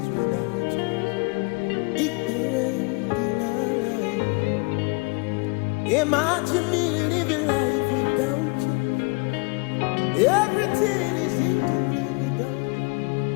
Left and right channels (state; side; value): quieter; right; 29.2 dB